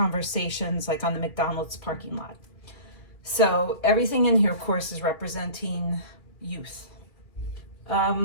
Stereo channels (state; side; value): late; right; 2.4 ms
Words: like on the McDonald's parking lot. So everything in here, of course, is representing youth.